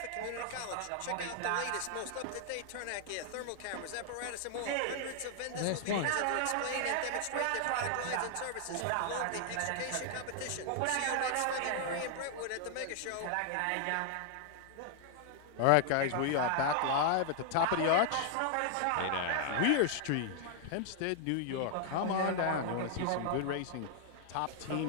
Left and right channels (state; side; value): different; both; correlation 0.00